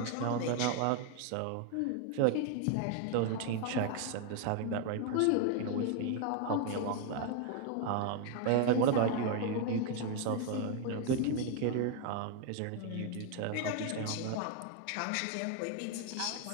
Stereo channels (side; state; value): both; different; correlation 0.00